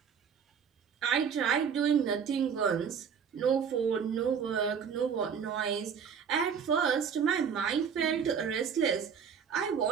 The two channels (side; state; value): left; quieter; 7.0 dB